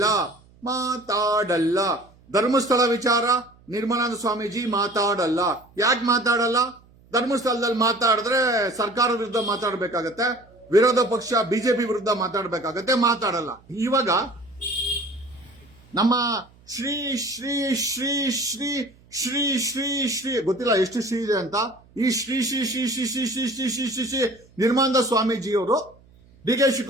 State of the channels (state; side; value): noise; right; hum, 28 dB below the sound